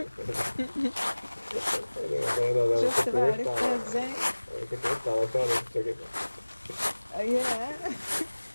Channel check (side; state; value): both; inverted; correlation -1.00